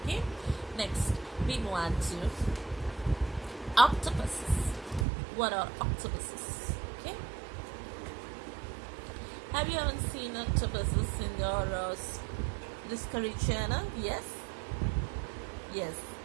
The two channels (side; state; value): left; drops out; at 5.1 s